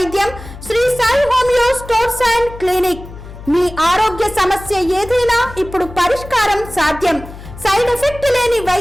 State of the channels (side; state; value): left; noise; hum, 15 dB below the sound